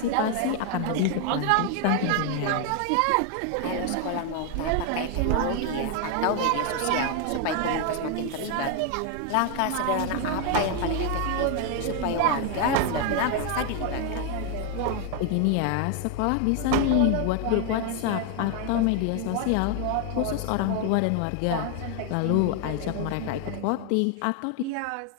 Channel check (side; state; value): both; different; correlation 0.01